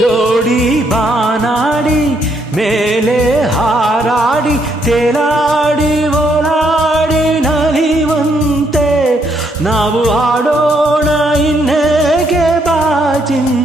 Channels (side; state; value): both; normal; correlation 0.73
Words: ಜೋಡಿ ಬಾನಾಡಿ ಮೇಲೆ ಹಾರಾಡಿ ತೇಲಾಡಿ ಓಲಾಡಿ ನಲಿವಂತೆ ನಾವು ಆಡೋಣ ಇನ್ನೇಗೆ